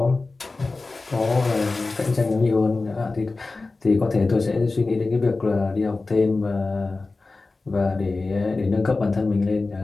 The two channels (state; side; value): quieter; right; 3.6 dB